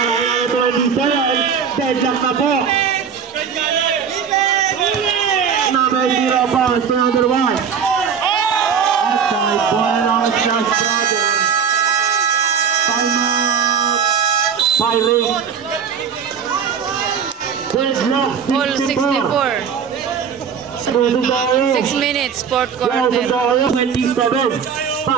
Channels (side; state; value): left; quieter; 7.0 dB